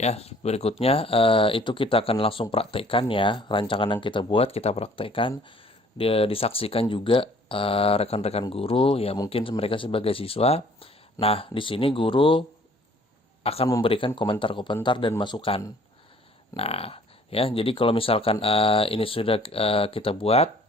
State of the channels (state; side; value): normal; both; correlation 0.56